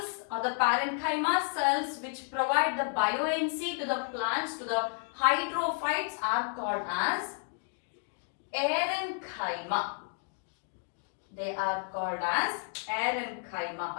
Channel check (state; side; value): silent; right; 57 dB below the other